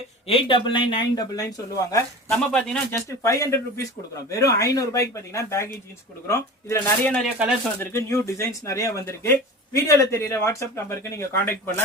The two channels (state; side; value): normal; both; correlation 0.34